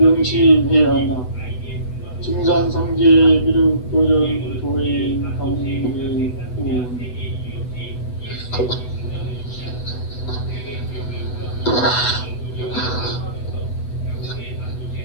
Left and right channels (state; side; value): late; right; 8.0 ms